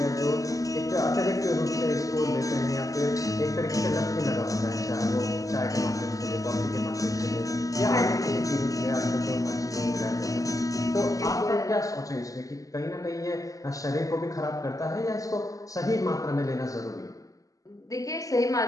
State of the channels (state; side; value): late; right; 0.17 ms